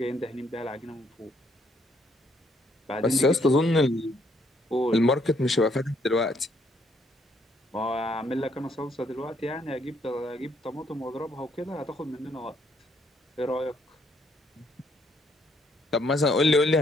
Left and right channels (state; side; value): normal; both; correlation 0.70